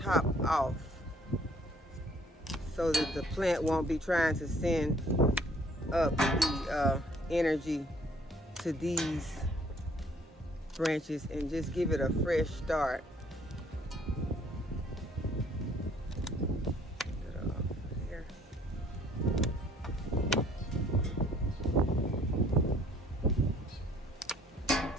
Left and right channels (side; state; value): both; normal; correlation 0.60